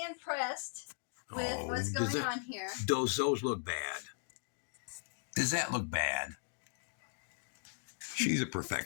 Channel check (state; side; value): silent; right; digital silence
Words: impressed with what's going on here. Those look bad. Does that look bad? She's a